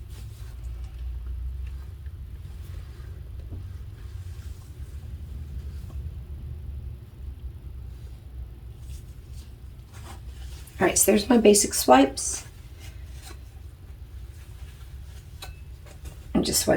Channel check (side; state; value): both; identical; correlation 1.00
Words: all right, so there's my basic swipes. I'm just